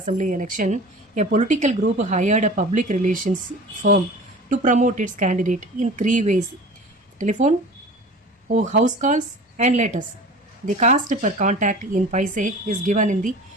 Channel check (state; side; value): normal; both; correlation 0.39